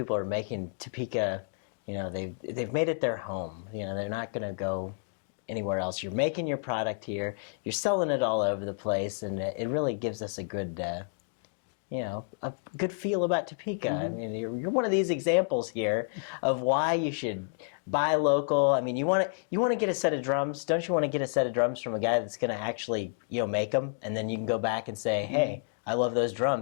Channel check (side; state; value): right; silent; digital silence